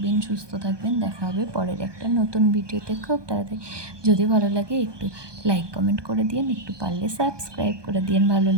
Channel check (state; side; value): late; left; 1.2 ms